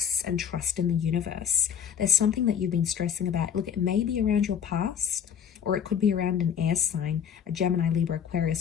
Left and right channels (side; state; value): right; quieter; 8.2 dB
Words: and trust in the universe. There's something that you've been stressing about. Look, it may be around your past, or it could be around an air sign, a Gemini, Libra,